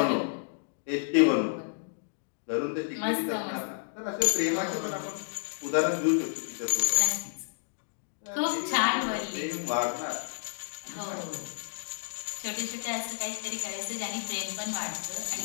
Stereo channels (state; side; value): silent; right; digital silence